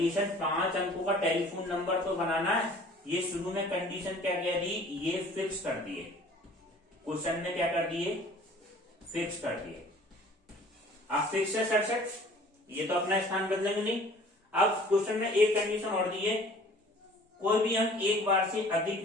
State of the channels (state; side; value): normal; both; correlation 0.50